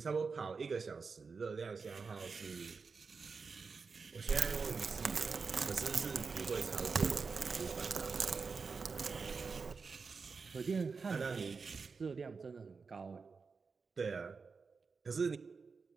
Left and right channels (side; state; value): left; quieter; 4.9 dB